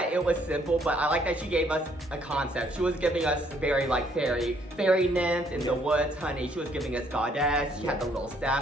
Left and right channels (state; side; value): normal; both; correlation 0.67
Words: it was simple, but I like that she gave us a concept. She was giving us very like fairy nymph in the woods, honey. She was giving us goddess. She had the little